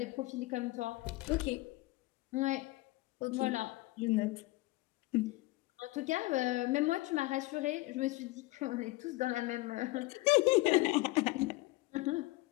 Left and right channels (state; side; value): quieter; right; 20.5 dB